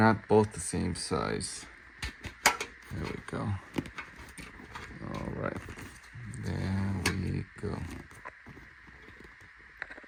both the same size. There we go. All right, there we go.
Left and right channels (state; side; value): identical; both; correlation 1.00